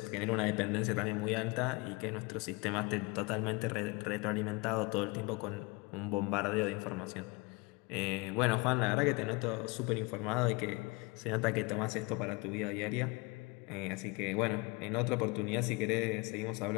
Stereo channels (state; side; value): quieter; right; 27.0 dB